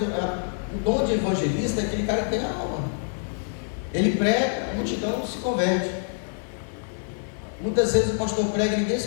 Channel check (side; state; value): right; silent; 61 dB below the other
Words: O dom de evangelista é aquele cara que tem a alma. Ele prega, a multidão se converte. Muitas vezes o pastor prega e ninguém se